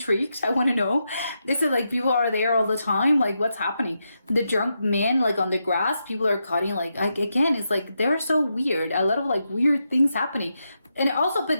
I want to know. This is like people are there all the time. Like, what's happening? The drunk man like on the grass, people are cutting like again, it's like they're so weird. A lot of like weird things happening. And also,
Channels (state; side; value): inverted; both; correlation -0.85